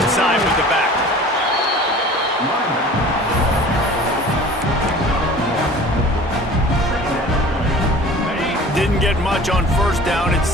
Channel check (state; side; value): normal; both; correlation 0.44